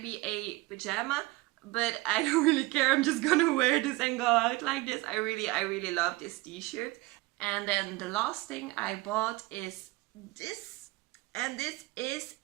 be a pajama, but I don't really care. I'm just gonna wear this and go out like this. I really love this t-shirt. And then the last thing I bought is this. And this is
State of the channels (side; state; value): left; quieter; 21.3 dB